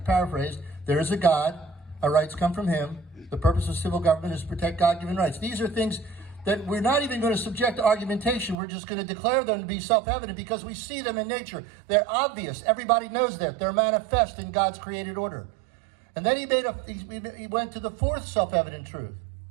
paraphrased. There is a God. Our rights come from Him. The purpose of civil government is to protect God-given rights. These are things that we're not even going to subject to argumentation. We're just going to declare them to be self-evident because we see them in nature. They're obvious. Everybody knows that. They're manifest in God's created order. And then he went to the 4th self-evident truth.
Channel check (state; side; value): drops out; left; at 8.6 s